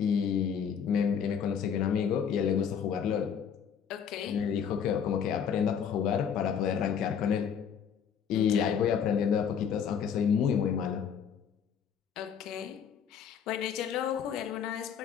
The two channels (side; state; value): right; quieter; 7.6 dB